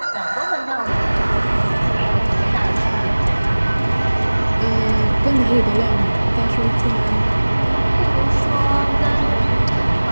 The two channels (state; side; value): inverted; both; correlation -1.00